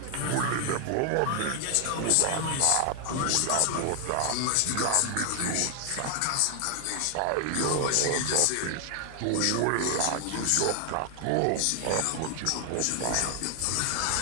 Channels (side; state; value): both; different; correlation 0.00